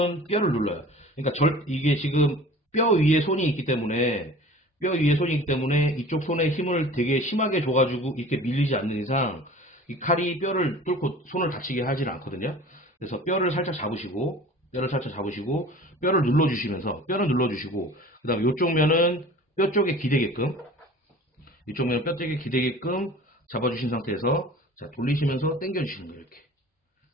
뼈를 눌러요. 그러니까 이게 지금 뼈 위에 손이 있기 때문에 이쪽 손에 힘을 되게 심하게 줘가지고 이렇게 밀리지 않는 이상 이 칼이 뼈를 뚫고 손을 다치게 하지는 않거든요. 그래서 뼈를 살짝 잡으시고 뼈를 눌러주시고 그 다음에 이쪽 면은 뼈 쪽에 기대게끔 잡아주신 상태에서, 자, 돌리시면서 당겨주시는 거예요. 이렇게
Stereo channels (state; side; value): normal; both; correlation 0.43